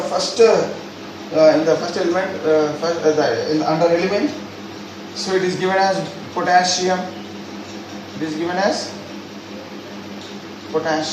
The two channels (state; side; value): identical; both; correlation 1.00